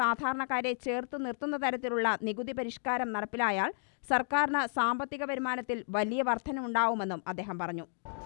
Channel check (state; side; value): silent; right; 56 dB below the other